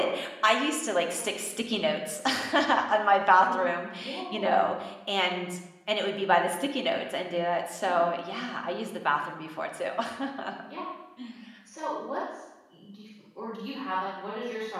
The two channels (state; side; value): identical; both; correlation 1.00